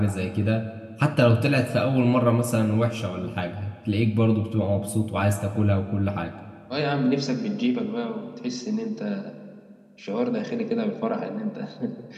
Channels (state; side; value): identical; both; correlation 1.00